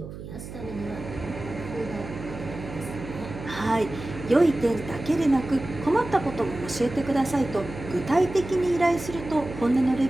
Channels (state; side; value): noise; right; hum, 11 dB below the sound